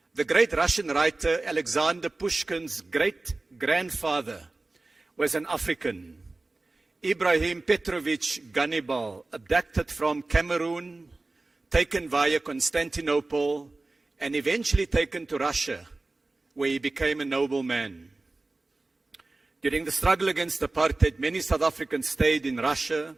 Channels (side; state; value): left; quieter; 3.2 dB